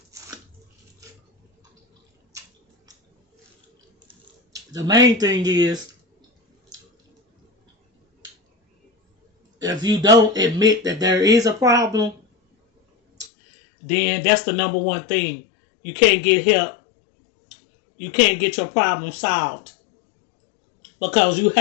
The main thing is, if you don't admit that there is a problem, then that's the number one thing. You can't get help. You can't get your problem solved because you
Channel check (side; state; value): right; drops out; at 13.3 s